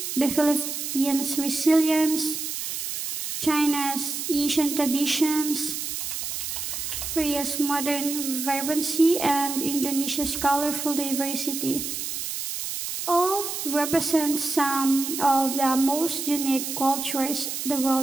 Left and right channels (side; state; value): right; noise; hiss, 4 dB below the sound